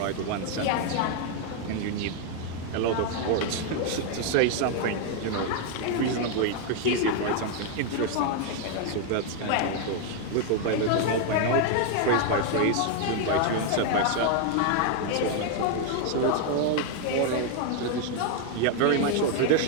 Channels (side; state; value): both; different; correlation 0.00